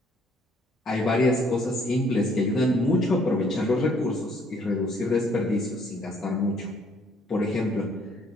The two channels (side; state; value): both; normal; correlation 0.64